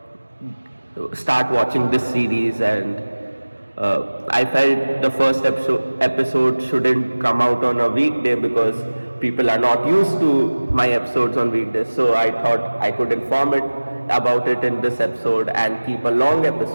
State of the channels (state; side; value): inverted; both; correlation -1.00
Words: start watching this series. And I felt the first episode shouldn't come out on a weekday because people are not used to my episodes on weekdays. So I thought I could inform it about it in this episode and keep a long